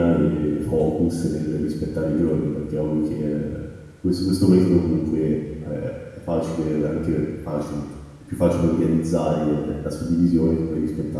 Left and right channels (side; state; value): both; identical; correlation 1.00